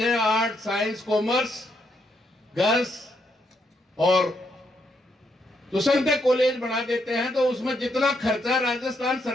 आर्ट, साइंस, कॉमर्स, गर्ल्स, और तो संख्या कॉलेज बना देते हैं, तो उसमें जितना खर्चा राजस्थान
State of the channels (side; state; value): both; normal; correlation 0.77